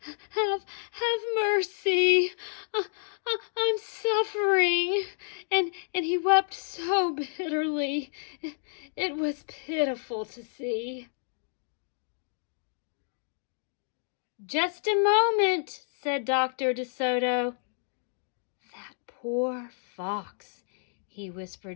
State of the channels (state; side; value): silent; right; digital silence